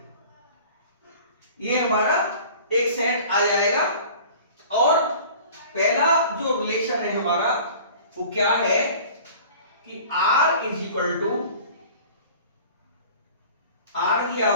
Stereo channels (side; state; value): both; inverted; correlation -0.44